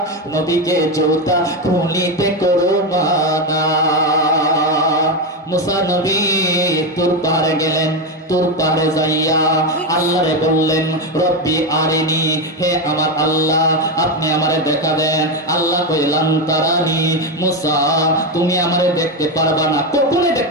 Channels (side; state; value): both; normal; correlation 0.11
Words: নবীকে জুতা খুলিতে করো মানা। মুসা নবী তুর পাহাড়ে গেলেন, তুর পাহাড়ে যাইয়া আল্লাহরে বললেন রব্বি আরিনি, হে আমার আল্লাহ আপনি আমারে দেখা দেন। আল্লাহ কইলাম তারানি, মুসা তুমি আমারে দেখতে পারবা না, কখনোই